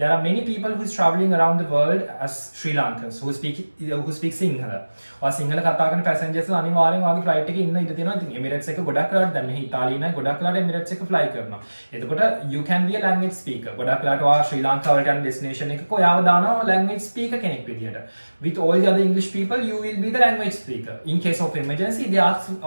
are many people who is traveling around the world as Sri Lankans who speak Sinhala. or Sinhala කතා කරන passengers ලා අනිවාර්යෙන් ඔයාගේ flight එකේ ඉන්න ඉඩ තියෙනවා. ඉතින් Emirates එක ගොඩක් වෙලාවට දැන් මේ ඉතාලියේ නෑ ගොඩක් වෙලාවට Emirates එක fly කරනවා. එතකොට you can be a language speaker. ගොඩක් වෙලාවට ඔයා ශ්‍රී ලංකාවට යන destination එකක ඔයාව දානවා language speaker කෙනෙක් විදියට. With all the other English people, you will be the language speaker. In case of emergency, they ask,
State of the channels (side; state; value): both; inverted; correlation -1.00